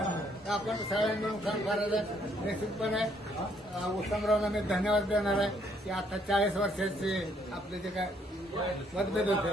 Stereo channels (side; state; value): both; normal; correlation 0.68